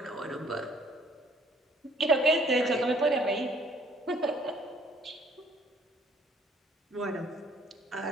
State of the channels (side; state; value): both; normal; correlation 0.61